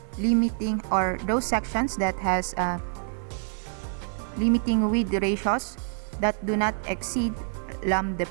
limiting or those sections that has limiting width ratios that do not exceed lambda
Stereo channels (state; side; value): silent; left; 60 dB below the other